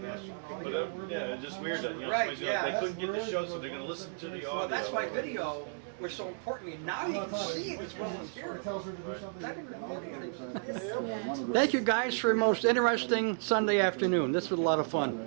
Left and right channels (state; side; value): silent; left; digital silence